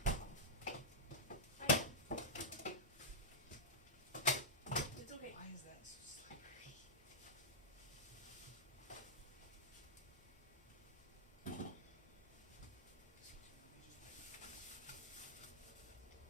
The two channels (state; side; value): normal; both; correlation -0.11